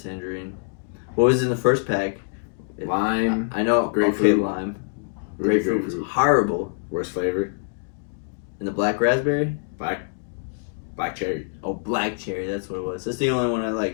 What was in the first pack? Lime. I know. Grapefruit. Okay, lime. Grapefruit was horrible. Worst flavor? And the black raspberry? Black cherry. Oh, black cherry. That's what it was. That's the only one I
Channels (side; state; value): right; silent; digital silence